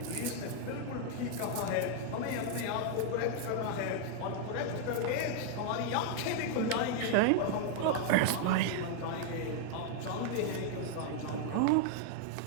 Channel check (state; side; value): different; both; correlation 0.00